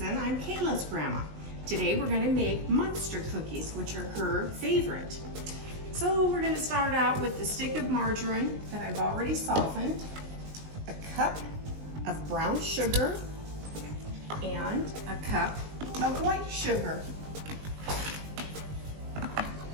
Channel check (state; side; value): late; left; 19 ms